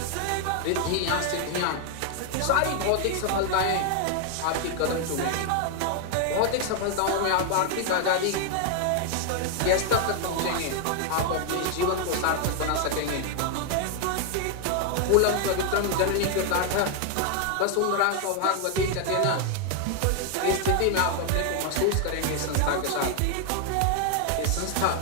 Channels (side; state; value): both; different; correlation 0.00